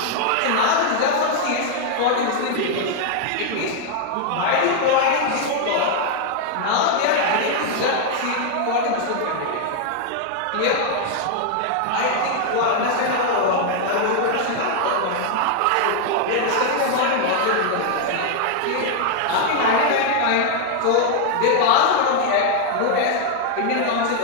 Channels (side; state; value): both; different; correlation 0.00